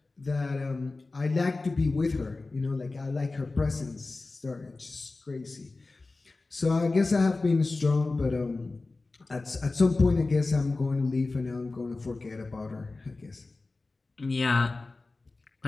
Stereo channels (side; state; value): right; quieter; 3.5 dB